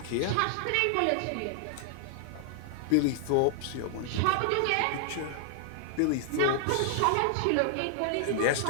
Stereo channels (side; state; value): both; different; correlation -0.01